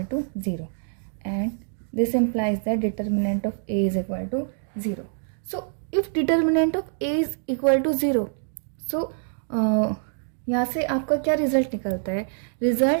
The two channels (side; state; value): left; silent; digital silence